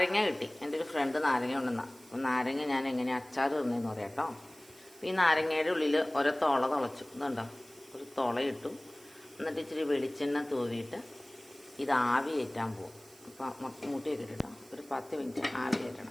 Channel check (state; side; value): noise; right; hiss, 24 dB below the sound